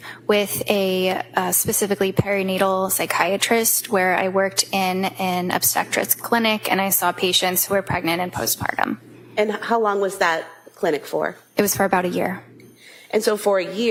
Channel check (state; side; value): identical; both; correlation 1.00